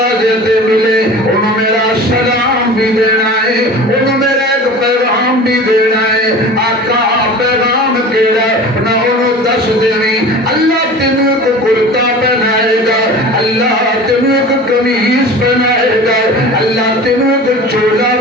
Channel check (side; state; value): both; normal; correlation 0.38